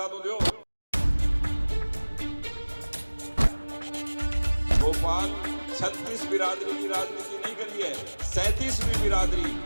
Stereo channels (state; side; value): inverted; both; correlation -1.00